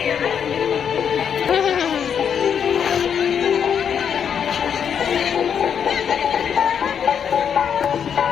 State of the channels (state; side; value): quieter; right; 7.8 dB